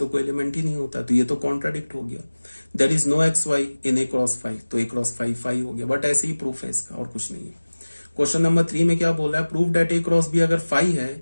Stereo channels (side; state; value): both; inverted; correlation -1.00